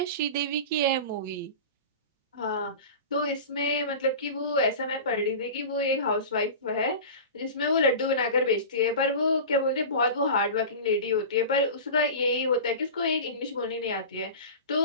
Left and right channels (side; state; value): both; inverted; correlation -0.32